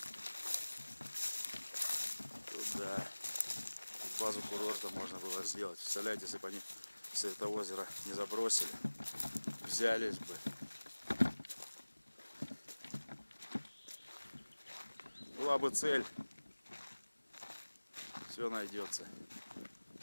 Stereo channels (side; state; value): both; inverted; correlation -1.00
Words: Туда. Базу курорта можно было сделать. Представляете, если бы они все это озеро не забросили, взялись бы. Была бы цель. Все найдется.